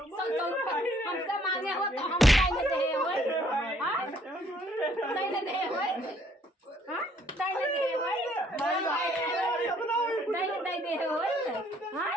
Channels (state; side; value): normal; both; correlation 0.64